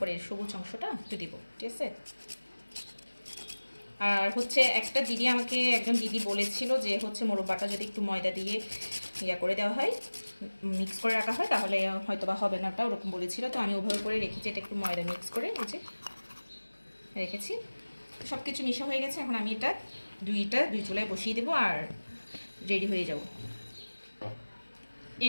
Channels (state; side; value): inverted; both; correlation -1.00